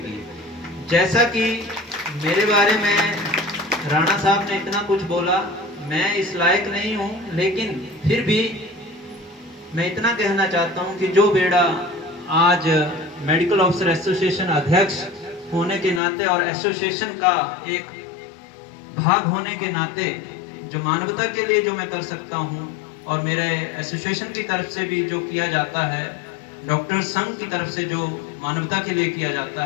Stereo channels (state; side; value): drops out; right; at 16.0 s